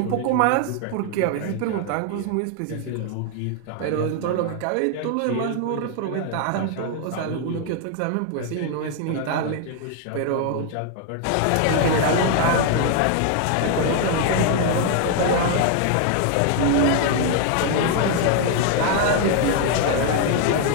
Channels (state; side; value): different; both; correlation 0.00